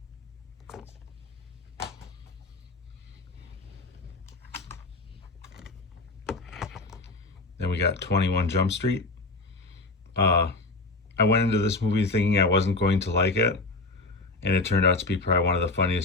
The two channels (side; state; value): right; quieter; 3.3 dB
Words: Then we got 21 Jump Street. I went into this movie thinking I wasn't going to like it, and it turned out to be probably one of the